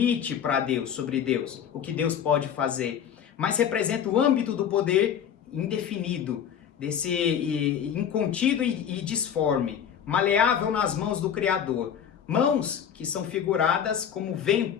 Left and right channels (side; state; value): right; quieter; 8.6 dB